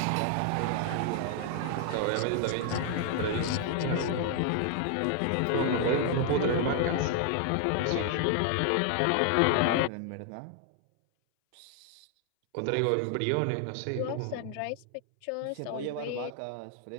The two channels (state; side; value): different; both; correlation 0.00